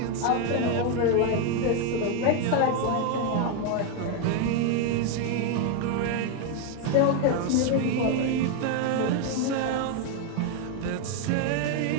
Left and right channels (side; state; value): both; different; correlation 0.01